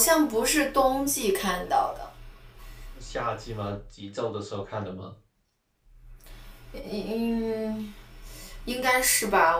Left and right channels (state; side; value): identical; both; correlation 1.00